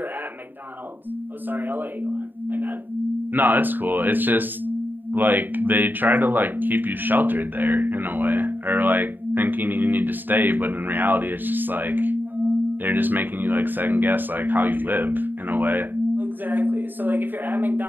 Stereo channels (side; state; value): left; late; 0.091 ms